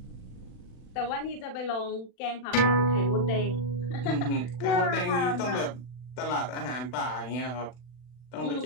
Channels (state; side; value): late; right; 40 ms